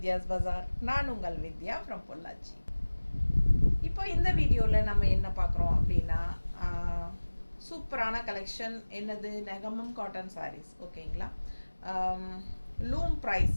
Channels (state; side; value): inverted; both; correlation -1.00